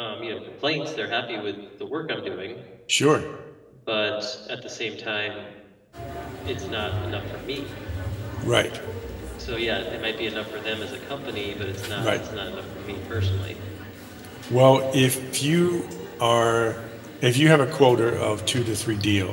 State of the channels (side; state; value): both; identical; correlation 1.00